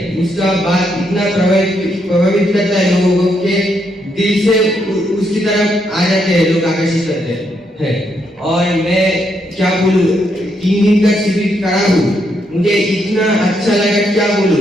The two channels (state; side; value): normal; both; correlation 0.77